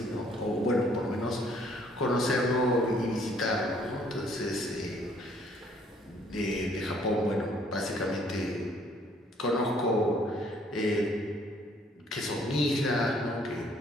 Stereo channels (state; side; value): normal; both; correlation 0.62